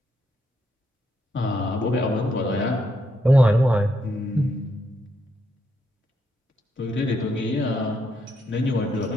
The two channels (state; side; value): normal; both; correlation 0.78